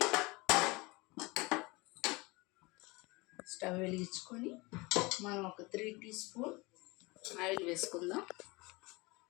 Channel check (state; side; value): quieter; right; 24.5 dB